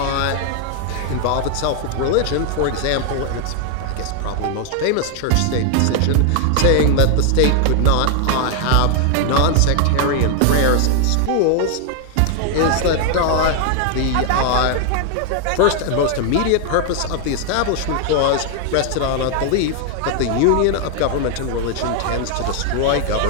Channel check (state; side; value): different; both; correlation 0.00